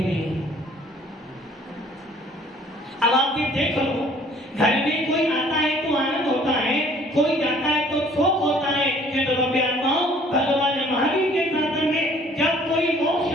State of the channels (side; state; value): both; normal; correlation 0.56